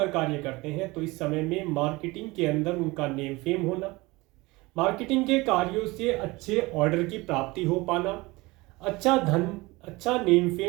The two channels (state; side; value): quieter; left; 22.4 dB